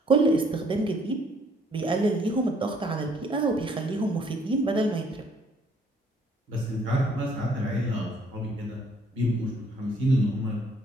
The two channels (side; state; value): both; normal; correlation 0.63